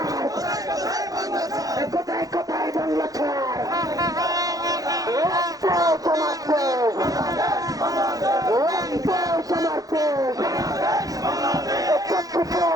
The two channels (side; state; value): left; late; 0.17 ms